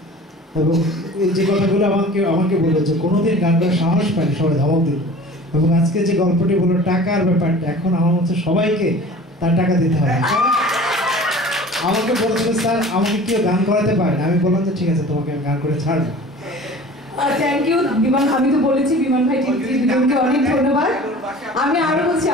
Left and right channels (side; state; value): both; normal; correlation 0.42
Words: এবং এই যে কথাগুলো আমাকে বললো যে কোনোদিন গান করার সাহস পায়নি, সবাই ধমক দিল। এবং আজকে যে গল্পটি বললো টাকার ব্যাপারটা, এখন আমার মধ্যে সবাইকে তার টাকা দিতে হবে। আমাকে বলছিল স্যার আমাকে কেউ গান করাতে পারে না, আমি বললাম যে ঠিক আছে তোমাকে আমি গান করে ছাড়বো। থ্যাংক ইউ বিমান, আমি তো বলেছি বিমান ভাই দুজনকে অনেক ধন্যবাদ। আমি আরো বলছি